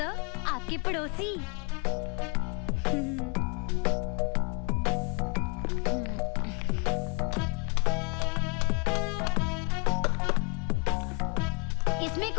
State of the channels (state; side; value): quieter; right; 34.8 dB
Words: आपके पड़ोसी। इसमें